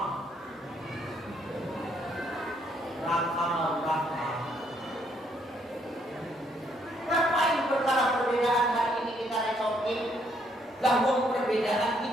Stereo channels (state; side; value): normal; both; correlation 0.70